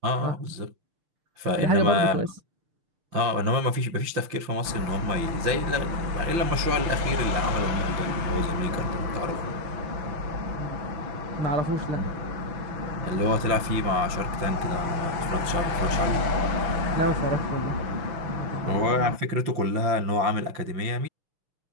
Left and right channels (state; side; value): late; left; 5.9 ms